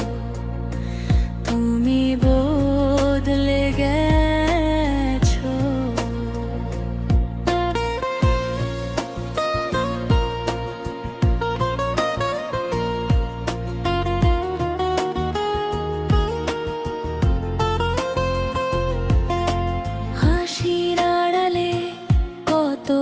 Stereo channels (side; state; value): both; identical; correlation 1.00